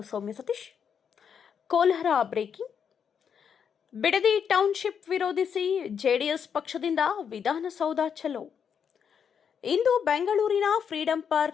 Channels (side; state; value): right; quieter; 7.3 dB